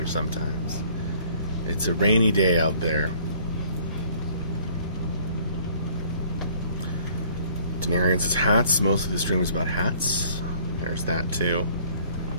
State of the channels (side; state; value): both; inverted; correlation -0.57